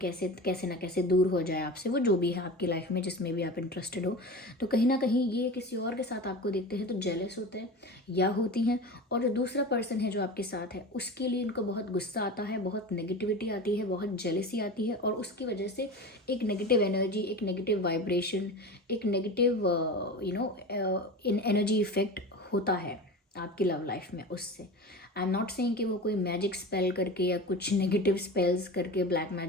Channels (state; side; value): normal; both; correlation 0.30